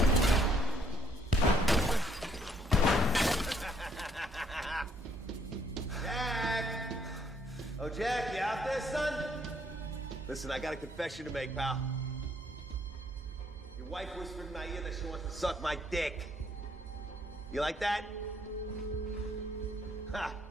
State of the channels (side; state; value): both; normal; correlation 0.68